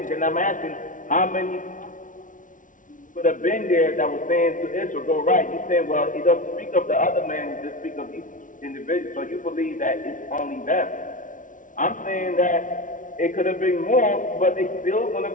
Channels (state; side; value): late; right; 0.38 ms